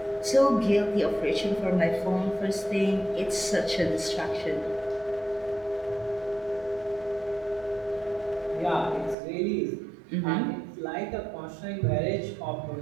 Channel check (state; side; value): drops out; left; at 9.2 s